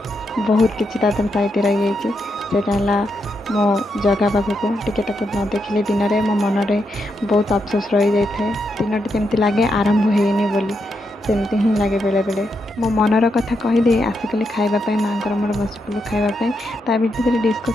बहुत किसी तादर साइड रही जाइए। मो जगह पाखक टिके न देखिले दिन में मो मन में बहुत अफसोस रही जाए। दिनटी केमती लगे आरंभ होनी बोली, सेमती ही लगे बेले बेले। मो मनर कथा कहीदे आसिकली खाइबापी माँ मोर बसपुलू खाइबापी। ता भितर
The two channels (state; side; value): normal; both; correlation 0.82